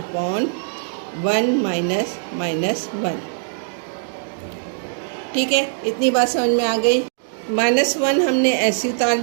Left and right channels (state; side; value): silent; left; digital silence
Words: 1 माइनस -1। ठीक है, इतनी बात समझ में आ गई। -1 हमने ऐसे उतार